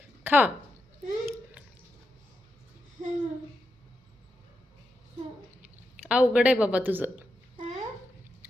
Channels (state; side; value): normal; both; correlation 0.85